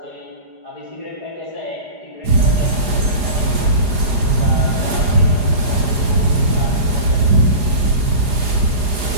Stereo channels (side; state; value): left; late; 4.9 ms